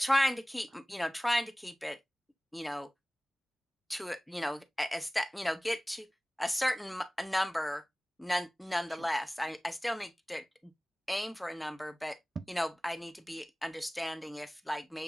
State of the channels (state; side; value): normal; both; correlation 0.98